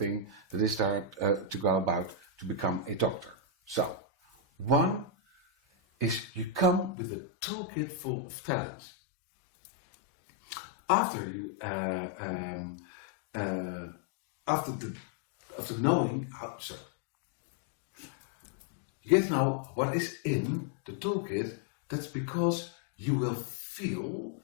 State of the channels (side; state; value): right; drops out; at 7.0 s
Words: that is there to go about to become a doctor. So, one is you come with a toolkit full of talents. After you, after knowing how, You get to know what is in the toolkit. That's because you will feel